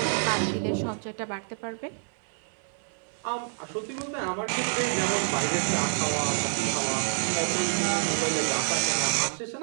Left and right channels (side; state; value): left; silent; digital silence